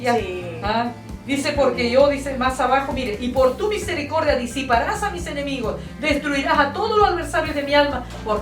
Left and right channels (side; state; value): both; identical; correlation 1.00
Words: ¿Ah? Dice, porque yo, dice más abajo, mire, y por tu misericordia disiparás a mis enemigos, destruirás a todos los adversarios de mi alma,